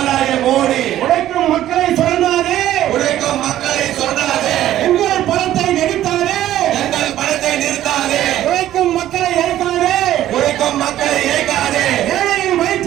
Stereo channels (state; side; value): quieter; left; 12.9 dB